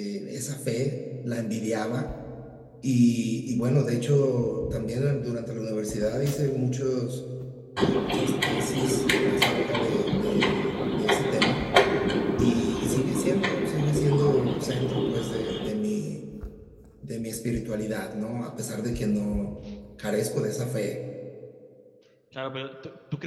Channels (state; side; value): identical; both; correlation 1.00